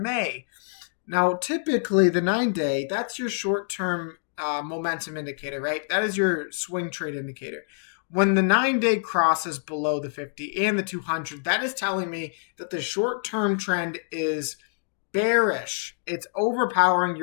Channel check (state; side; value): silent; right; digital silence